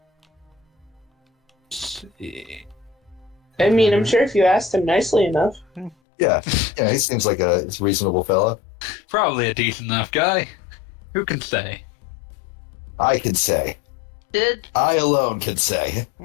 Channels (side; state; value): right; drops out; at 6.0 s